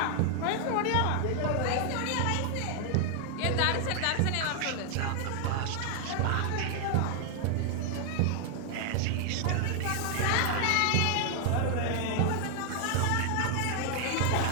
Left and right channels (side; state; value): both; different; correlation 0.00